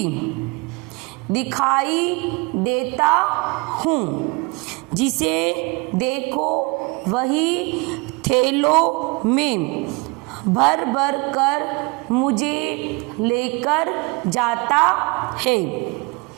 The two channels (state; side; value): quieter; left; 27.7 dB